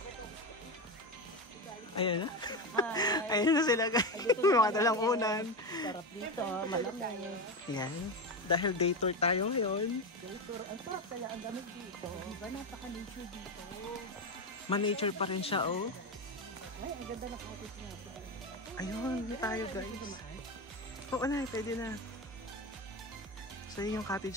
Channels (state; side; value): normal; both; correlation 0.15